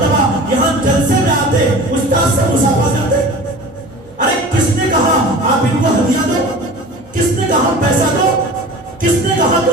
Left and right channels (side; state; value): both; normal; correlation 0.39